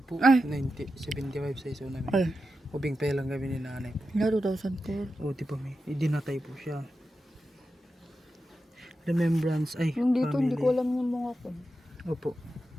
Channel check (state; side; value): normal; both; correlation 0.90